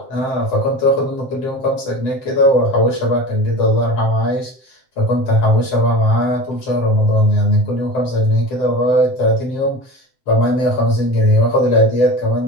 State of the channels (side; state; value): right; late; 7.7 ms